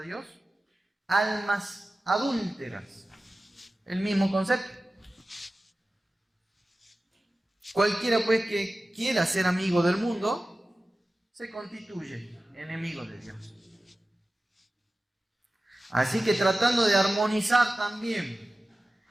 Dios? Almas adúlteras, el mismo concepto. Cualquiera pues que quiera ser amigo del mundo se constituye enemigo de Dios. Así que tratando de armonizar también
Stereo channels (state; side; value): normal; both; correlation 0.95